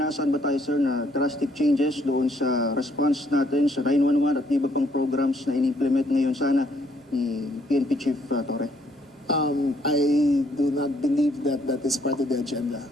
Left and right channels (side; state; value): both; normal; correlation 0.68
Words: ba tayo sir na drastic changes doon sa response natin sa 911 at iba pang programs na in-implement ngayon sana ni PNP Chief Torre? I do not believe that that is part of the agenda.